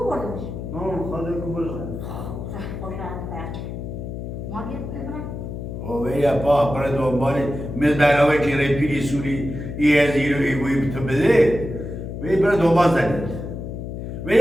بردمش؟ نه خواهده کبور شد خوش راحت ما بیرم اوه پا برای دنبالی مثل برنامه که رای پیری سوری از ایرو ایگوی تو بده وی برای دنبال زنید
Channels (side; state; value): left; noise; hum, 7 dB below the sound